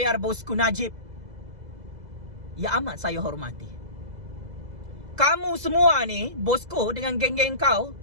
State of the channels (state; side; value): late; left; 2.0 ms